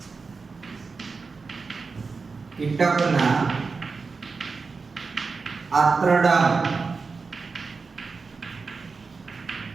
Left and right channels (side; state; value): left; quieter; 4.5 dB